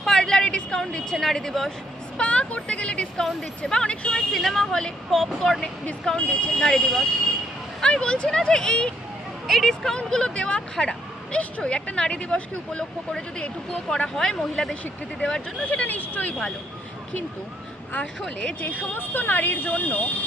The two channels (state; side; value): normal; both; correlation 0.72